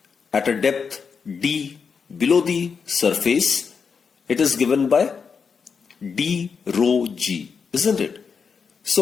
at a depth d below the surface, it is given by d rho g, isn't it?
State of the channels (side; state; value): right; quieter; 5.9 dB